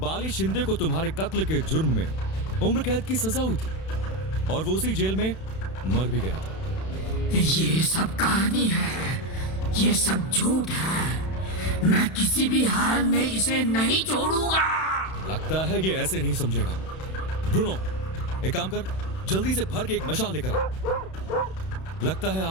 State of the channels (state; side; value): late; right; 31 ms